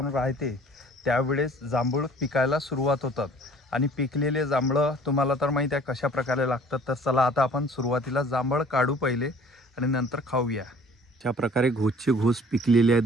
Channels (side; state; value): both; normal; correlation 0.52